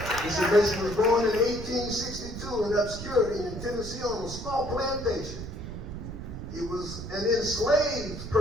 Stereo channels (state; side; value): noise; right; rumble, 8 dB below the sound